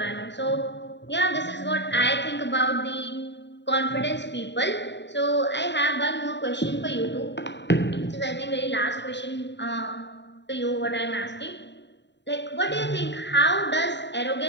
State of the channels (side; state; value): right; late; 0.52 ms